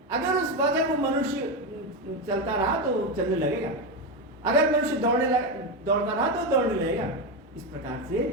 अगर उस वक्त वो मनुष्य चलता रहा तो चलने लगेगा, अगर मनुष्य दौड़ता रहा तो दौड़ने लगेगा। इस प्रकार से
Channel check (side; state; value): both; normal; correlation 0.12